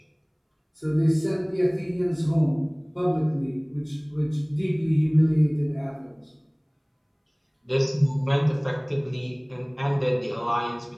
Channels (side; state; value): both; identical; correlation 1.00